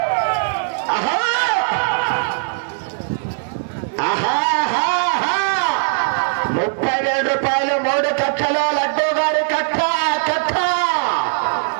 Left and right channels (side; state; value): left; silent; digital silence